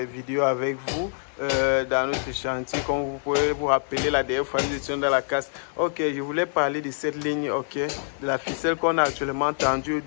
avec vous dans notre chantier. Comme vous pouvez vous rappeler, la dernière fois nous étions dans la casse. Ok, je voulais parler de cette ligne, ok, de la ficelle qu'on a actuellement tendue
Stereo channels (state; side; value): silent; right; digital silence